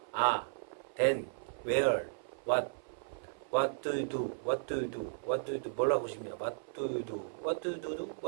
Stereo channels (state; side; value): silent; left; 54 dB below the other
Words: then, where, what do you do, what do you do, what do you do, 뭐라고 싶냐, what do you do, what do you do,